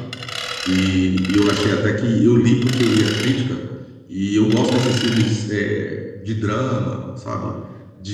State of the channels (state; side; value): identical; both; correlation 1.00